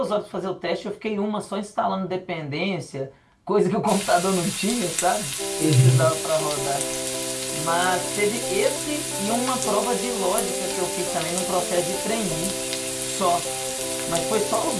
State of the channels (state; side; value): identical; both; correlation 1.00